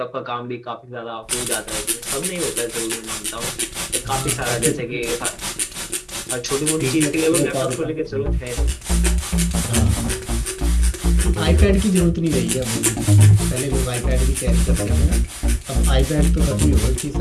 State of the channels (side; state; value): both; identical; correlation 1.00